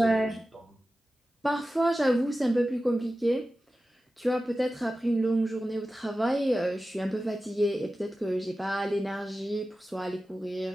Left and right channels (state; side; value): normal; both; correlation 0.94